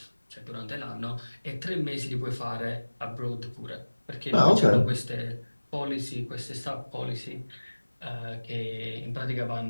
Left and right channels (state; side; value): inverted; both; correlation -1.00